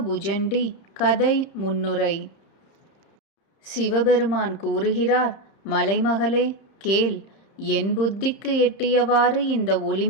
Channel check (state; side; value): late; right; 30 ms